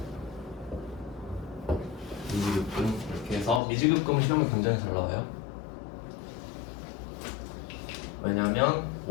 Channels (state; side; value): drops out; right; at 3.6 s